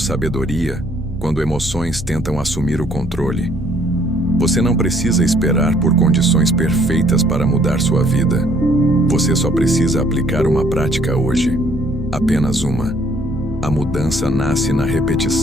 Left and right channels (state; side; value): noise; right; hum, 13 dB below the sound